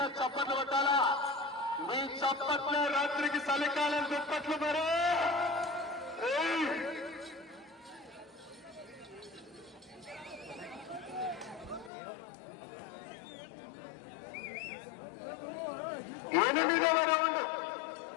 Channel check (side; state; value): right; drops out; at 11.9 s